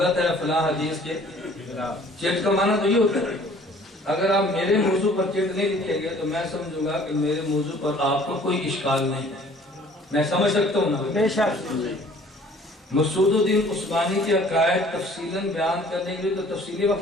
ہے، فلاں حدیث کے خلاف۔ چٹ کا معنی تو یہ ہوتا ہے اگر آپ میرے موضوع پر چٹ نہیں لکھیں گے تو میں سمجھوں گا کہ میرے موضوع پر آپ کو کوئی اشکال نہیں ہے، میں سمجھ سکتا ہوں نا؟ بے شک۔ مسعود الدین عثمانی کے عقائد تفصیلاً بیان کرنے کے لیے تو تفصیلی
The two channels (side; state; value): both; normal; correlation 0.54